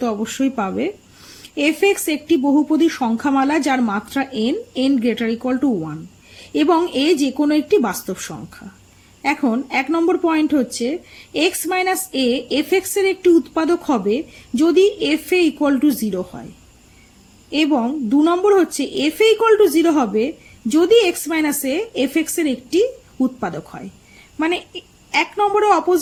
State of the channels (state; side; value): identical; both; correlation 1.00